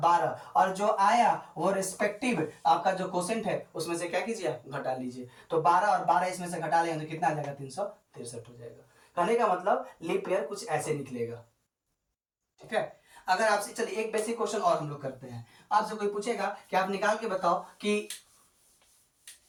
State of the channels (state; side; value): identical; both; correlation 1.00